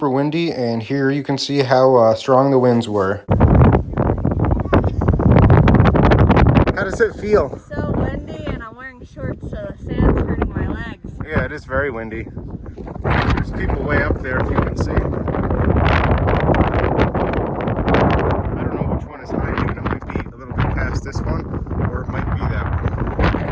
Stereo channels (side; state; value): both; identical; correlation 1.00